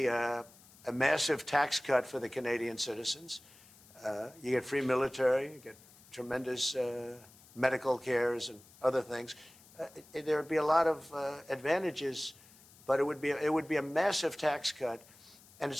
a massive tax cut for the Canadian citizens. You get free military, you get tremendous medical cares and other things. There would be a lot of advantages, but it would be a massive tax cut. And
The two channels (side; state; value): left; noise; hiss, 24 dB below the sound